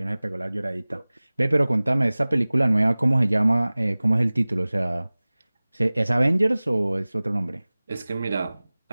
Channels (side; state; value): both; inverted; correlation -0.99